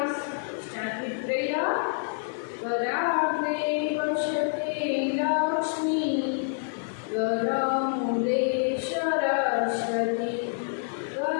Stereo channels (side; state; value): right; silent; digital silence